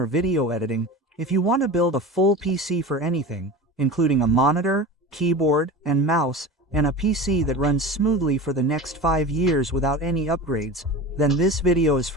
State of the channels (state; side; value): normal; both; correlation 0.31